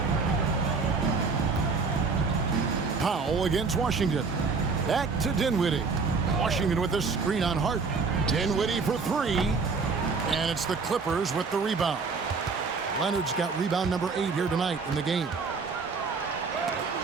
Powell against Washington. Back to Dinwiddie. Washington with the screen on Hart. Dinwiddie for 3. And it's the Clippers with the rebound. Leonard's got rebound number 8 here tonight in the game.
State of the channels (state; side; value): quieter; left; 4.7 dB